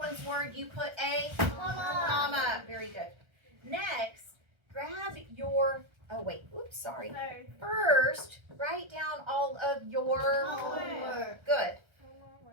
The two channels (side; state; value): left; late; 1.3 ms